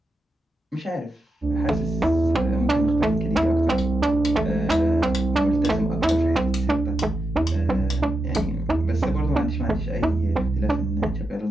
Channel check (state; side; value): normal; both; correlation 0.88